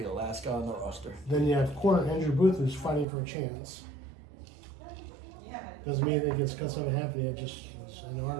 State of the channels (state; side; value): drops out; left; at 3.1 s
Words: the last guy on the roster. Then you have corner Andrew Booth, who's fighting for a chance. Doesn't mean it gets cut something happening. It just was in the